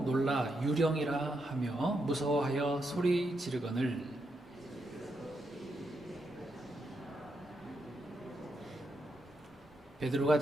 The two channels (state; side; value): normal; both; correlation 0.82